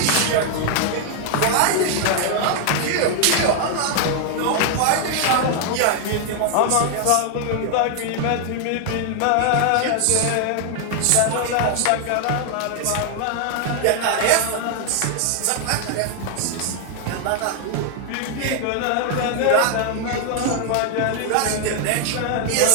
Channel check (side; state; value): both; different; correlation 0.00